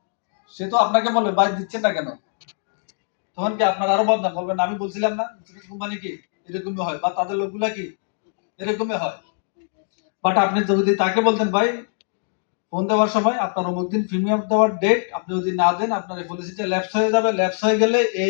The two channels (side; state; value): right; silent; 64 dB below the other